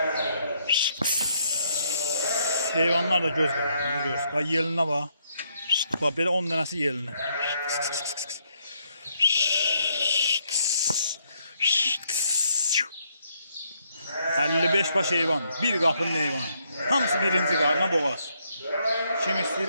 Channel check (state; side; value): inverted; both; correlation -0.73